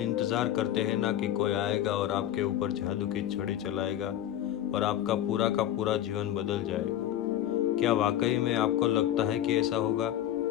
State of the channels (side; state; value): right; quieter; 11.9 dB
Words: इंतज़ार करते हैं ना कि कोई आएगा और आपके ऊपर जादू की छड़ी चलाएगा और आपका पूरा का पूरा जीवन बदल जाएगा। क्या वाकई में आपको लगता है कि ऐसा होगा,